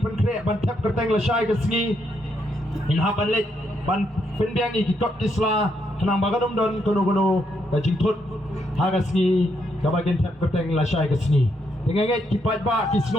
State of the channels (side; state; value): both; normal; correlation 0.77